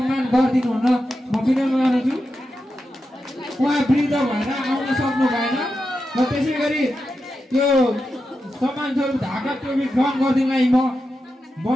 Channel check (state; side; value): normal; both; correlation 0.89